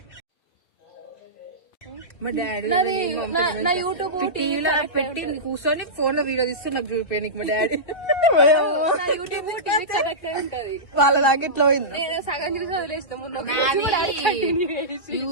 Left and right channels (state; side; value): late; right; 2.5 ms